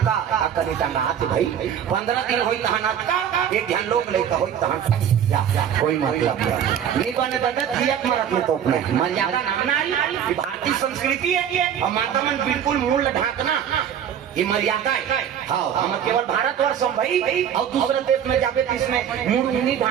कने टंगा हाथ भाई 15 दिन होई तहन अत्ता एक ध्यान लोग लेका होई तहन जा कोई मतलब नहीं बने बता जियत मरत में तोप में मर्यादा नाम ना आई भारतीय संस्कृति है और माता मन बिल्कुल मूल ढाकना ये मर्यादा है। हाँ हम केवल भारतवर्ष हम भाई और दूसरे देश में जावे तो इसमें मुड़ नहीं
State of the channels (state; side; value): quieter; left; 9.1 dB